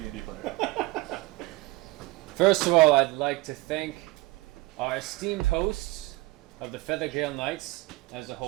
player. First of all, I'd like to thank our esteemed hosts of the Feathergale Knights as a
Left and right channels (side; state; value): left; quieter; 21.0 dB